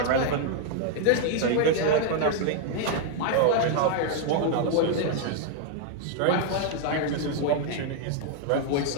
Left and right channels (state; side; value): different; both; correlation 0.00